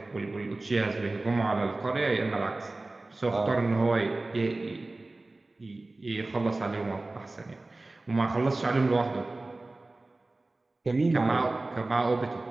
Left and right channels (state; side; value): quieter; left; 3.1 dB